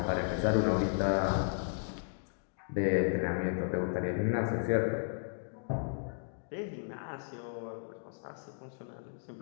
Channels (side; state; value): right; silent; digital silence